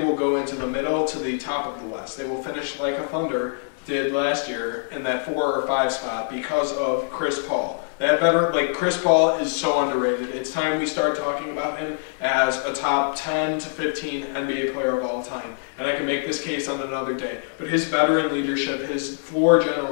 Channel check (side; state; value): right; silent; digital silence